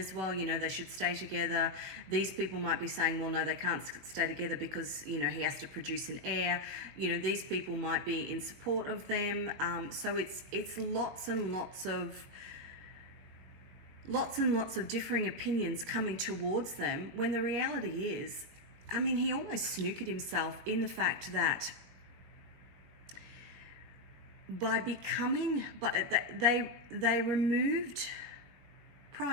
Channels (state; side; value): late; left; 22 ms